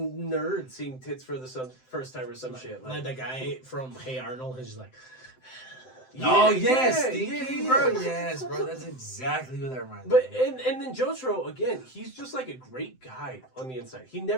seeing tits for the first time or some shit. Like the guy from Hey Arnold is like. Oh yes, Stinky, bro. Yes, bro. That's exactly what that reminds me. But and then Jotaro again, he's just like a great guy on the inside. He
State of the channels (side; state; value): right; late; 7.8 ms